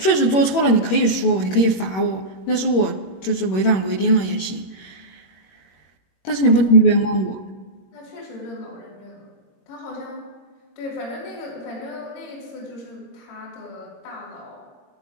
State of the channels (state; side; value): late; right; 21 ms